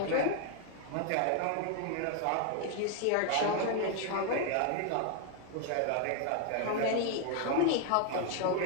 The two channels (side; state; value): both; different; correlation 0.00